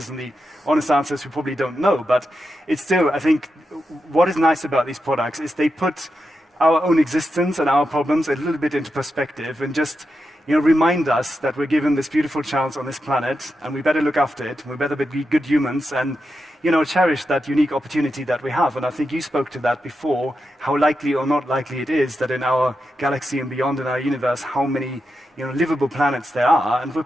And the honest answer is we probably don't know. But it's still, I think, what is nice about these products is they put our own existence and our problems a little bit into perspective and just remind us that we're given this beautiful chance on this planet, and we better look after it. We better be good humans and, cherish that unique opportunity that we have. And I think you spoke to that before, how likely or not likely it is that in our galaxy and beyond in our universe, how many, livable planets there are, and we're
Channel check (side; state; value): both; normal; correlation 0.87